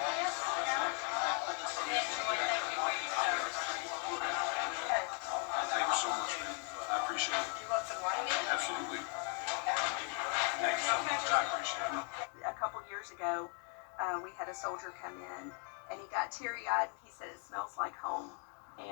this? Thank you so much, man. I appreciate it. You want some wine? Absolutely. Thank you so much. I appreciate it. A couple years ago, we had a soldier come in, and he got teary-eyed, and he said it smells like home,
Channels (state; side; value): quieter; right; 39.7 dB